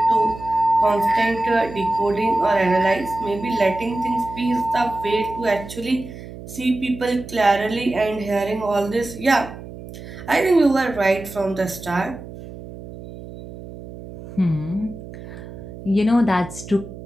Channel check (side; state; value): right; noise; hum, 14 dB below the sound